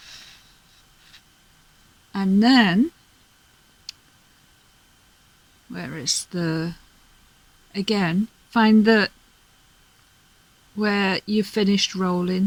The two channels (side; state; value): both; identical; correlation 1.00